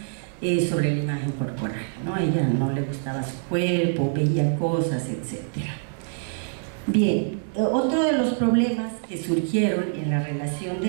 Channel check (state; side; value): silent; left; digital silence